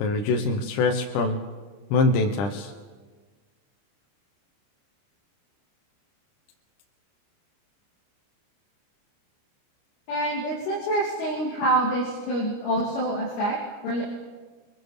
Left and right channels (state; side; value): late; right; 29 ms